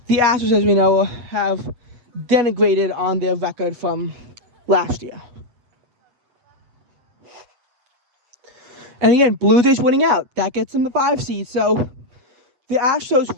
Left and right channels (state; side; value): late; left; 8.3 ms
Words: the Astros, as we know, have denigrated on their record from last year. And again, Blue Jays winning out, that gets them the 5 seed. So the Astros